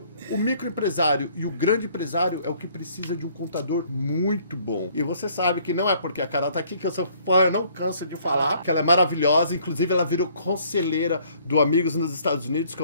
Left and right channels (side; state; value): both; inverted; correlation -0.61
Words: O microempresário e o grande empresário é o que precisa de um contador muito bom. E você sabe que não é porque a Carol tá aqui que eu sou fã, eu não canso de falar, que ela é maravilhosa. Inclusive, ela virou conselheira do Amigos nos Estados Unidos, que